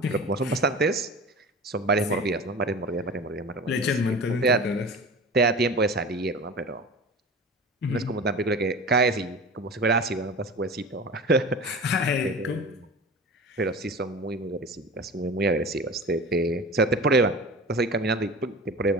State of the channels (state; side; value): normal; both; correlation 0.34